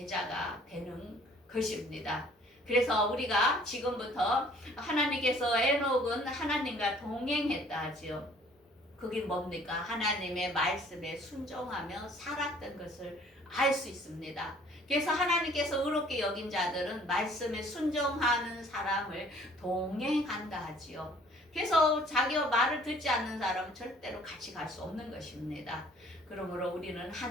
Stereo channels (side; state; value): both; normal; correlation 0.56